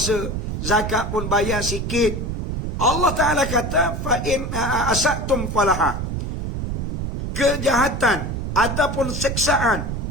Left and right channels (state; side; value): noise; right; rumble, 3 dB below the sound